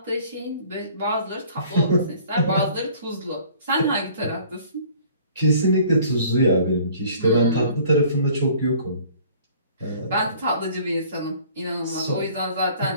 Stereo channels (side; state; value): both; inverted; correlation -0.53